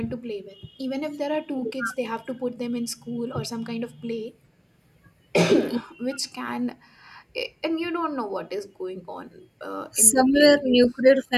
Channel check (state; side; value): identical; both; correlation 1.00